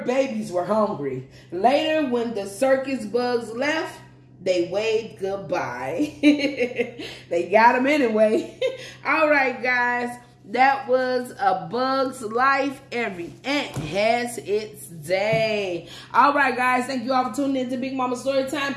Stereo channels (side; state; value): both; identical; correlation 1.00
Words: babies were hungry. Later, when the circus bugs left, they waved goodbye. They got him anyway. All right, guys. That was A Bug's Life. Every ant has its day. All right, guys. Thank you all for tuning in to Big Mama Storytime.